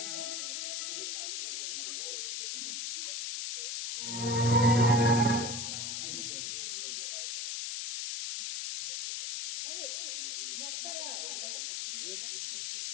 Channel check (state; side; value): noise; left; hiss, 4 dB below the sound